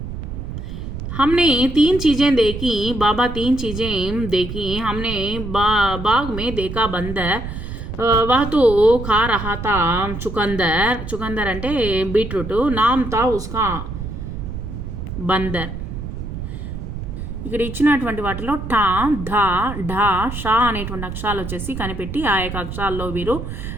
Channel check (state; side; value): noise; right; rumble, 7 dB below the sound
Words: हमने 3 चीज़ें देखी, बाबा 3 चीज़ें देखी. हमने बाग में देखा बंदर, वह तो खा रहा था चुकंदर అంటే బీట్రూట్. నామ్ తా ఉస్కా బందర్. ఇక్కడ ఇచ్చినటువంటి వాటిలో టా, ధా, ఢా, షా అనేటువంటి అక్షరాలు వచ్చేసి కనిపెట్టి ఆ యొక్క అక్షరాల్లో మీరు